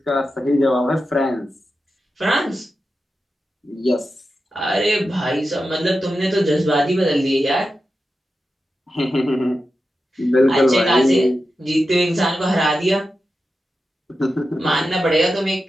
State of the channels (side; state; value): both; normal; correlation 0.91